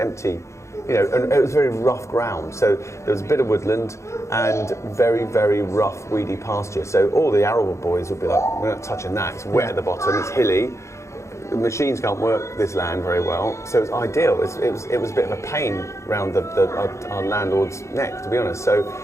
You know, and it was very rough ground. So there was a bit of woodland and very, very rough, weedy pasture. So all the arable boys would be like, we're not touching that. It's wet at the bottom. It's hilly. The machines can't work this land very well, so it was ideal. It was a bit of a pain around our landlord's neck, to be honest. So,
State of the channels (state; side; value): late; right; 0.14 ms